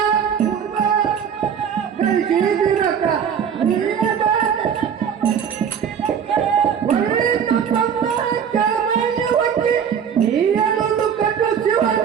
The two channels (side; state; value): left; quieter; 7.8 dB